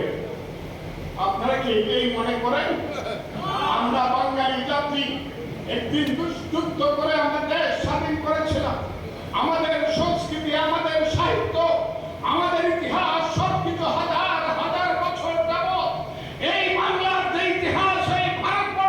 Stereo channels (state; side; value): identical; both; correlation 1.00